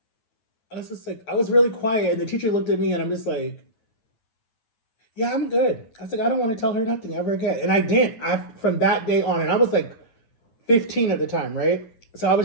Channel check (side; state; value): right; late; 9.2 ms